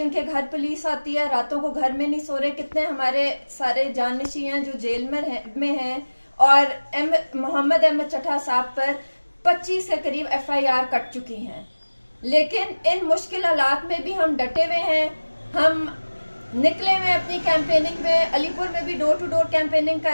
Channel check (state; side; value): inverted; both; correlation -1.00